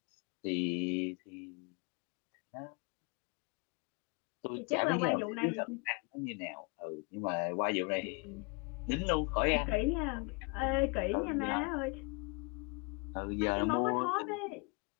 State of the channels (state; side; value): quieter; right; 32.2 dB